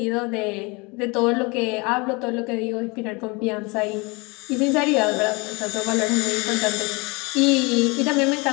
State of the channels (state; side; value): quieter; right; 27.8 dB